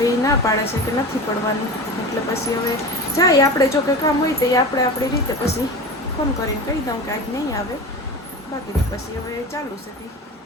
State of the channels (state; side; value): normal; both; correlation 0.31